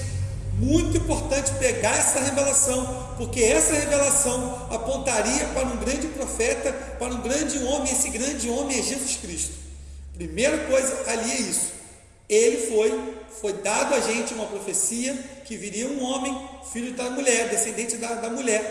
Muito importante pegar essa revelação, porque essa revelação apontaria para um grande profeta, para um grande homem. Esse grande homem é Jesus Cristo. Primeira coisa ali é isso. Ele foi dado a gente uma profecia que viria um homem, filho da mulher, descendente da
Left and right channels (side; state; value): both; identical; correlation 1.00